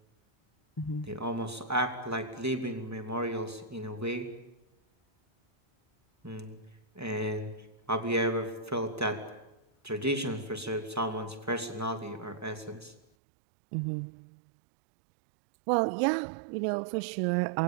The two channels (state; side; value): drops out; left; at 13.0 s